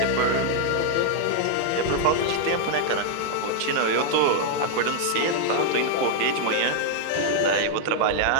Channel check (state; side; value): different; both; correlation 0.00